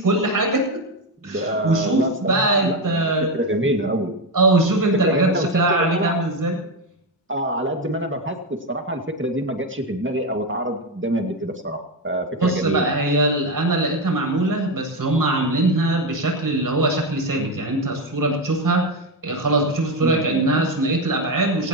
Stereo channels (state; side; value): normal; both; correlation 0.11